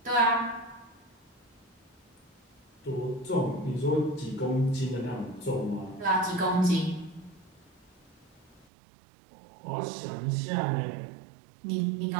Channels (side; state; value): left; drops out; at 8.7 s